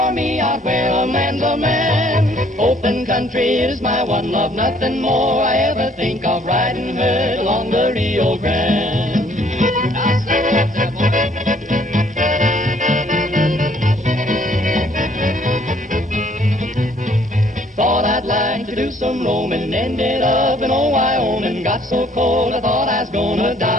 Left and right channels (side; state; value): both; normal; correlation 0.62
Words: me out where a man's a man. Open country is my one love, nothing more I ever think of, riding herd along the Rio Grande. Thought I'd like to do some roaming, ended up in old Wyoming. Got so cold I thought I was gonna